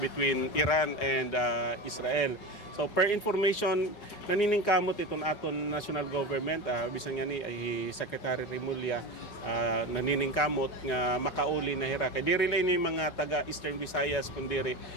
between Iran and Israel. So per information naniningkamot iton aton national government bisan nga ni Secretary Remulla naniningkamot nga makauli na hira kay diri ni mga taga Eastern Visayas kundi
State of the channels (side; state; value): right; late; 4.8 ms